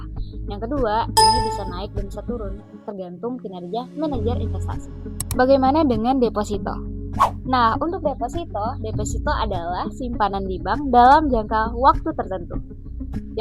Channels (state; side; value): identical; both; correlation 1.00